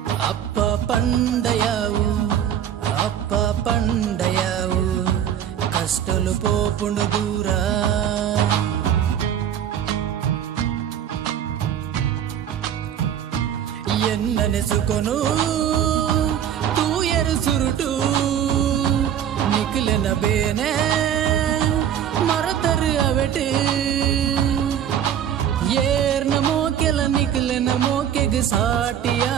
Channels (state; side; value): quieter; left; 9.7 dB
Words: ಅಪ್ಪ ಪಂಡಯ್ಯವು ಅಪ್ಪ ಪಂಡಯ್ಯವು కష్టలు పోపుండు దూరా. ఎన్నెసుకొను తూయరు సురుటు నికులెన ಬೇನೆ ಮರತರು ಅವೆಟು ಏರ್ನ ಮೋಕೆಲ ನಿಕುಲೆನ ಮೋಕೆಗೆ ಸಾಟಿಯ